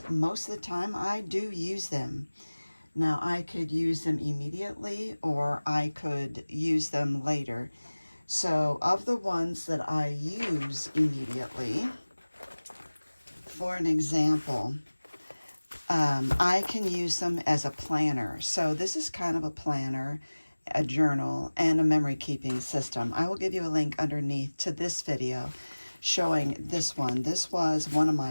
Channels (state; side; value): inverted; both; correlation -1.00